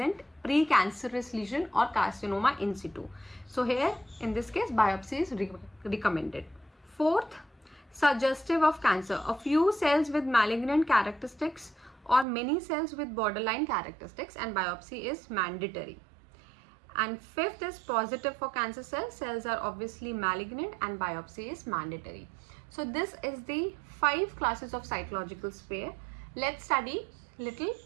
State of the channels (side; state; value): left; drops out; at 12.2 s